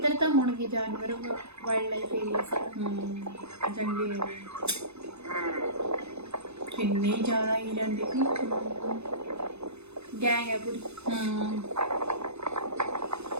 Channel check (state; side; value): late; left; 0.80 ms